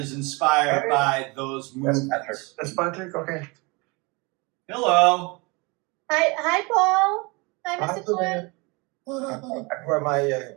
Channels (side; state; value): left; quieter; 27.4 dB